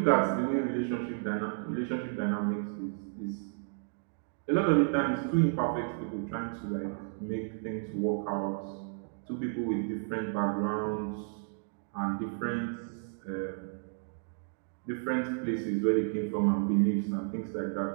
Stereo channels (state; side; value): silent; left; digital silence